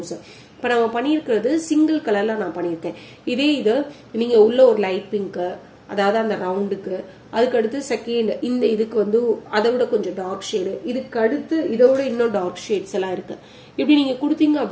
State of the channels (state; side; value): identical; both; correlation 1.00